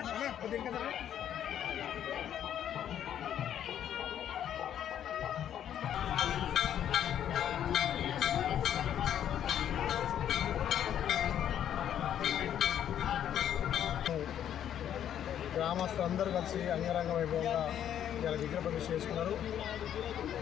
గ్రామస్తులందరూ కలిసి అంగరంగ వైభవంగా ఇలా విగ్రహ ప్రతిష్ఠ చేసుకున్నారు.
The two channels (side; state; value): right; quieter; 10.1 dB